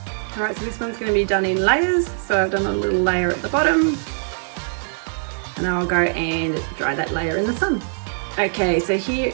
All right, so this one's going to be done in layers. So I've done a little layer at the bottom, and I'll go and dry that layer in the sun. Okay, so here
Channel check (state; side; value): silent; left; digital silence